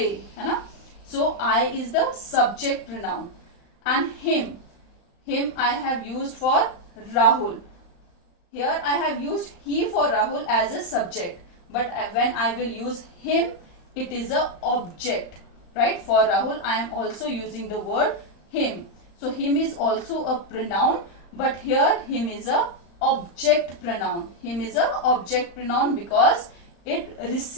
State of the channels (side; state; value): right; late; 35 ms